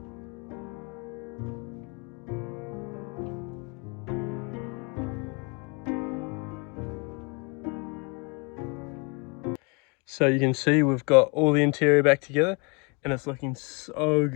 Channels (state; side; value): quieter; right; 32.0 dB